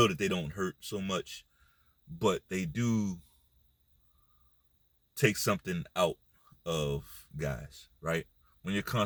that they don't hurt so much, but they do take something out of guys, right? When you're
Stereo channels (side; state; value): both; identical; correlation 1.00